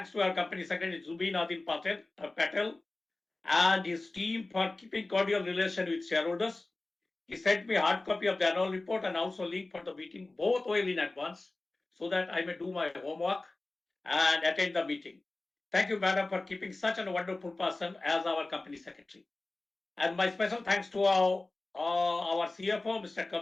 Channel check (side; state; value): right; quieter; 3.1 dB